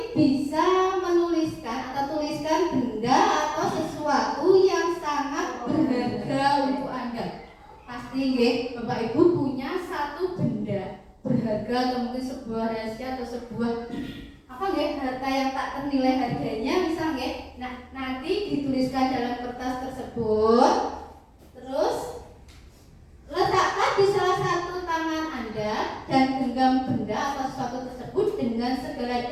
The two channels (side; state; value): both; identical; correlation 1.00